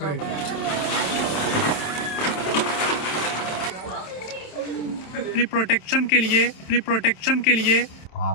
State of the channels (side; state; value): right; late; 27 ms